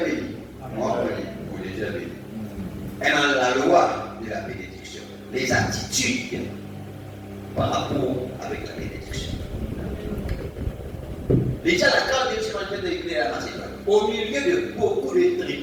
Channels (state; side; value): identical; both; correlation 1.00